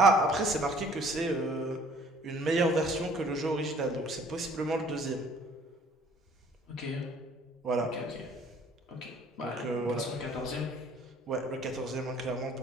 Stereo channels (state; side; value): normal; both; correlation 0.56